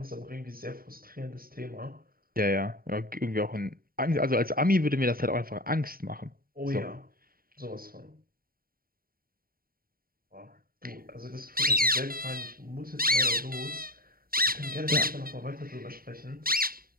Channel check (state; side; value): late; left; 0.43 ms